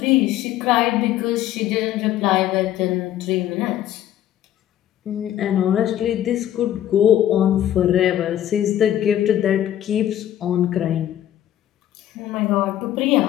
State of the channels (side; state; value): right; quieter; 11.9 dB